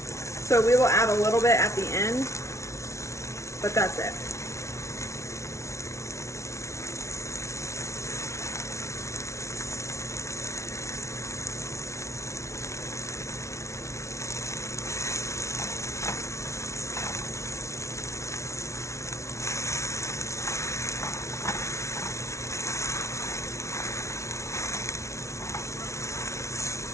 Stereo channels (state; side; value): late; right; 0.14 ms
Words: we will add a little bit at the end, but that's it.